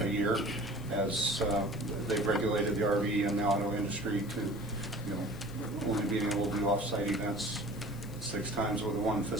year, as they've regulated the RV and the auto industry to, only being able to do off-site events 6 times over one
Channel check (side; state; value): left; noise; hiss, 21 dB below the sound